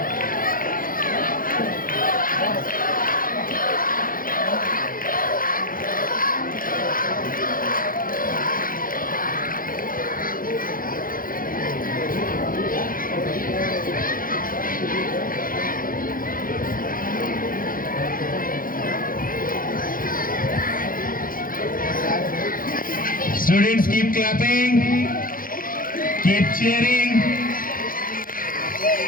Students, keep clapping, keep cheering.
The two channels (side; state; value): right; late; 0.41 ms